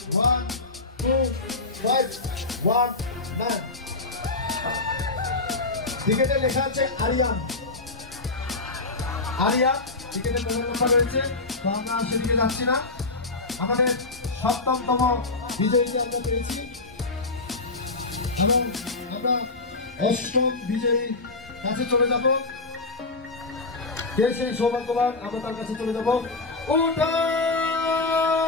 1 2 5 1 9। টিকেটে লেখা আছে আরিয়ান, আরিয়া। টিকেটের মোবাইল নাম্বার রয়েছে, তো আমরা সেদিকে যাচ্ছি না। আমাদের 7তম বিজয়ীকে আমরা পেয়েছি এবং আমরা 8ম বিজয়ী কাছে চলে যাব। কে সেই সৌভাগ্যবান, আমরা তার কাছে চলে যাব।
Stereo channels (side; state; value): right; quieter; 3.4 dB